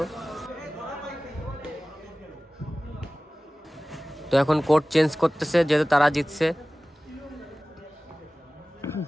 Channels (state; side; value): normal; both; correlation 0.98